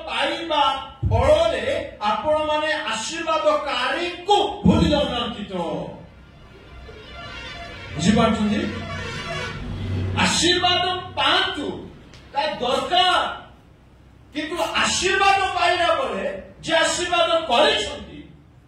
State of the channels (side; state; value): both; identical; correlation 1.00